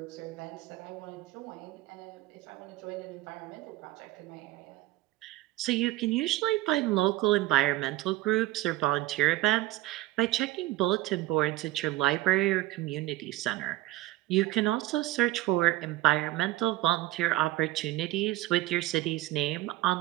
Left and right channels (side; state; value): left; quieter; 17.3 dB